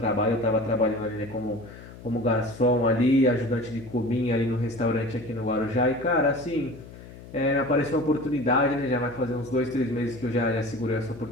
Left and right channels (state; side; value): noise; left; hum, 17 dB below the sound